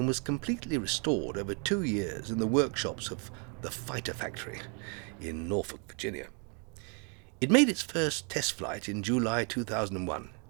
was completely restored over 2 years in the workshops of the Fighter Factory in Norfolk, Virginia. It made its first test flight in July 2001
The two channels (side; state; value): left; quieter; 37.9 dB